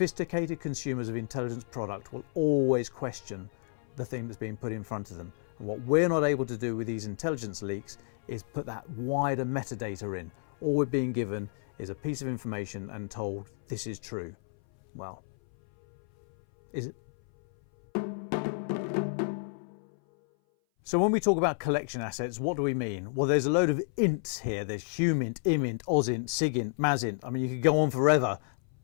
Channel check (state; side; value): silent; right; 57 dB below the other